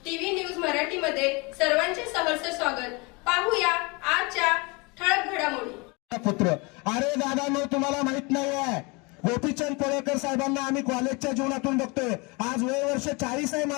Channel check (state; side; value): quieter; right; 28.2 dB